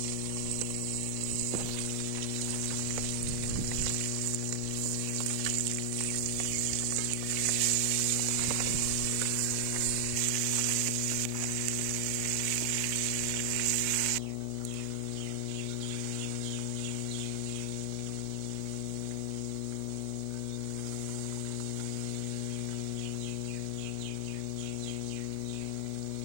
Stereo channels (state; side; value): different; both; correlation 0.00